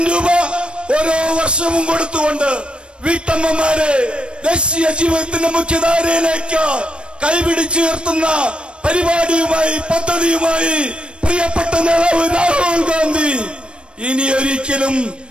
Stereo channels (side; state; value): left; late; 0.057 ms